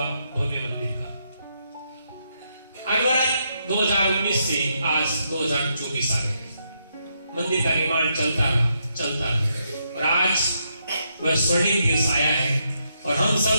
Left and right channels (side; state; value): both; inverted; correlation -0.79